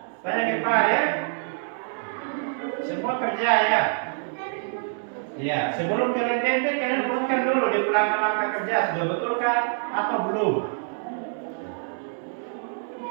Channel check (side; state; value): left; silent; 61 dB below the other